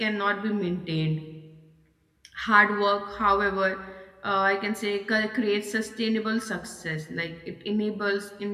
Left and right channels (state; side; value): identical; both; correlation 1.00